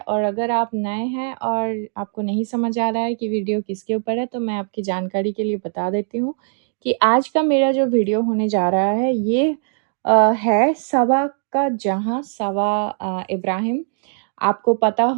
अगर आप नए हैं और आपको नहीं समझ आ रहा है कि वीडियो किसके ऊपर है, तो मैं आपकी जानकारी के लिए बता देती हूँ कि आज का मेरा जो वीडियो होने जा रहा है ये है सवा का जहाँ सवा इब्राहिम। आपको पता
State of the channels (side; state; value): left; silent; 65 dB below the other